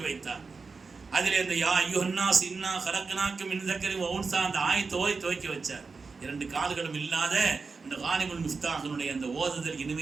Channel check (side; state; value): left; quieter; 4.5 dB